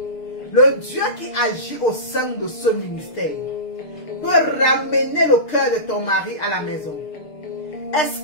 le Dieu qui agit au sein de ce ministère, peut ramener le cœur de ton mari à la maison? Est-ce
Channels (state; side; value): late; right; 6.6 ms